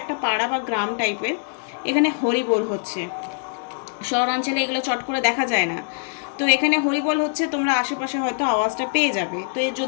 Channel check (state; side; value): silent; right; digital silence